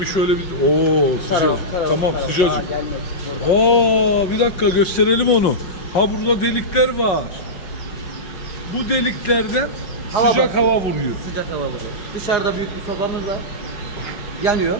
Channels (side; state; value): right; late; 5.3 ms